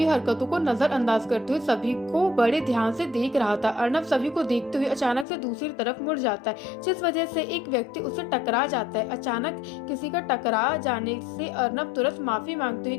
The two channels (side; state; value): right; drops out; at 5.2 s